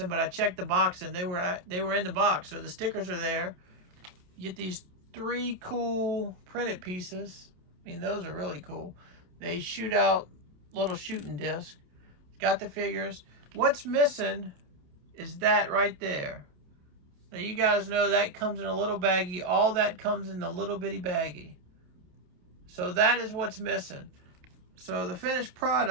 but I checked the box and they were in the box. So the stickers are there. You get these 3 cool printed pieces. I mean, those are really cool. They shoot out little shooting discs. It's got the figures. What's missing is that right there. Now you guys know that comes in a little baggie. All that comes in the little bitty baggie. So that is what's missing. So the finished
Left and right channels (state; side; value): late; left; 28 ms